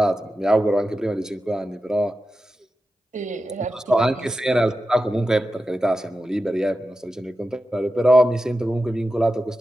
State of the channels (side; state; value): both; normal; correlation 0.91